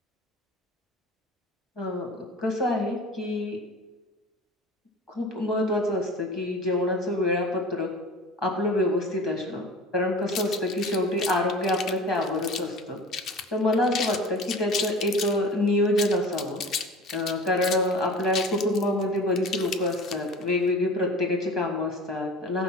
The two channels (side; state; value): both; normal; correlation 0.38